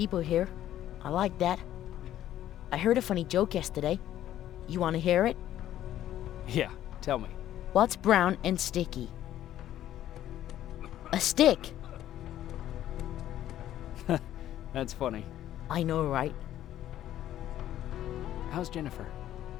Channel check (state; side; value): quieter; right; 12.4 dB